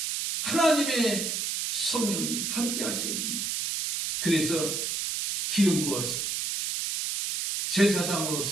하나님의 성령님이 함께 하셔야 됩니다. 그래서 기름 부어서 제사장으로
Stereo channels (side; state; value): right; noise; hiss, 1 dB below the sound